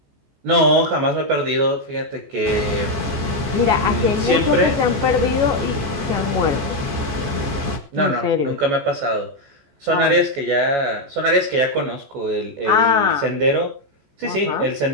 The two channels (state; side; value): late; left; 14 ms